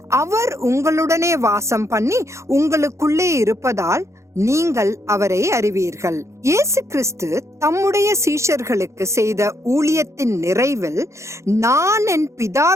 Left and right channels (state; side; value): late; left; 0.14 ms